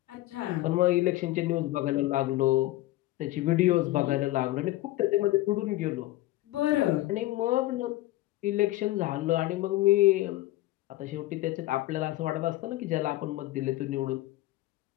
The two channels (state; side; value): quieter; right; 17.1 dB